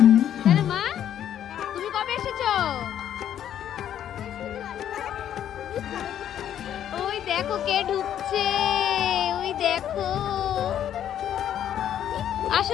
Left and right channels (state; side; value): quieter; right; 10.3 dB